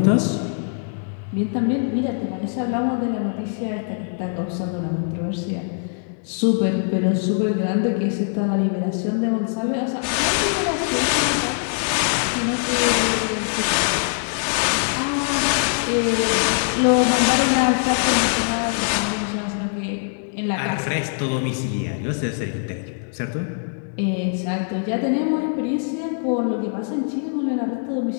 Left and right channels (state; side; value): silent; right; digital silence